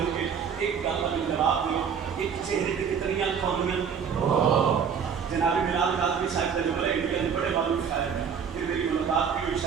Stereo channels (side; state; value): left; quieter; 7.0 dB